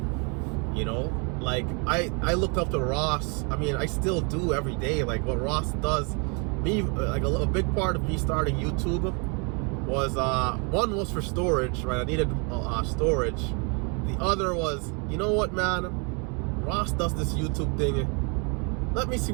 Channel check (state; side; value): quieter; left; 34.7 dB